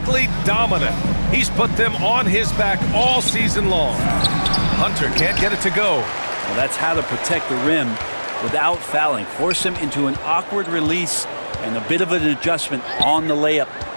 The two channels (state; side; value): inverted; both; correlation -1.00